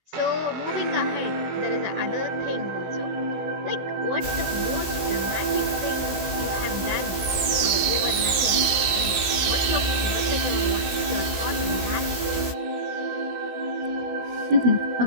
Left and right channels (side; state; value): left; late; 16 ms